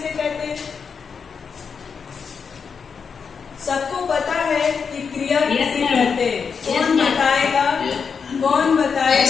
कहते हैं? सबको पता है कि क्रिया किसे कहते हैं? कौन बताएगा? कौन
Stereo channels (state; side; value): quieter; right; 6.0 dB